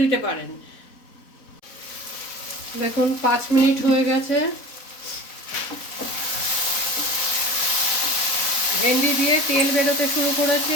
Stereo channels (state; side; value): late; right; 4.0 ms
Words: দিতে পারেন। দেখুন, 5 মিনিট হয়ে গেছে। ভেন্ডি দিয়ে তেল বেরোতে শুরু করেছে,